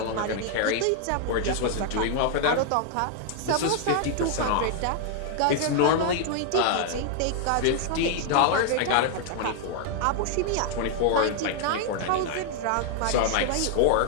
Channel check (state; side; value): different; both; correlation 0.00